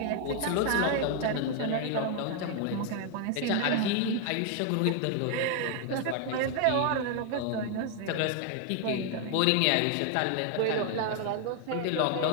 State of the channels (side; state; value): both; different; correlation 0.00